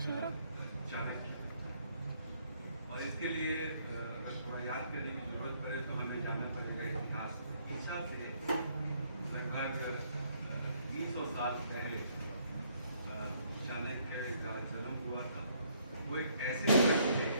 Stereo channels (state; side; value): inverted; both; correlation -0.68